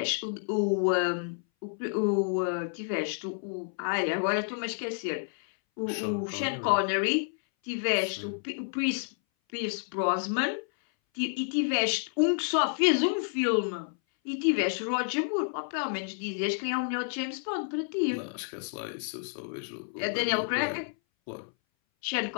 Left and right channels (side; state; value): right; silent; 58 dB below the other